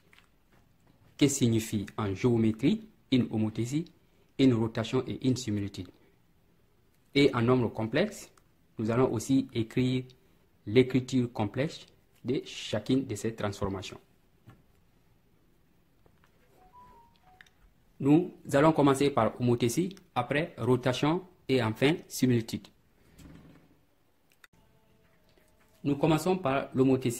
que signifie en géométrie une homothétie, une rotation et une similitude. Et en nombre complexe, nous allons aussi écrire l'écriture complexe de chacune de ces transformations. Nous allons commencer par homothétie, après rotation et enfin similitude. Nous commençons par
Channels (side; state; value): both; identical; correlation 1.00